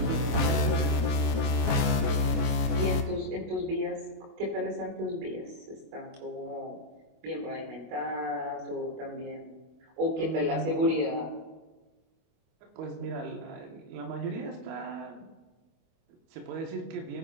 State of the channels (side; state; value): left; late; 24 ms